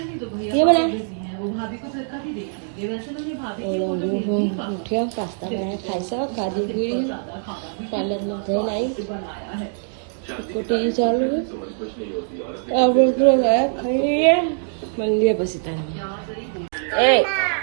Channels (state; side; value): silent; left; digital silence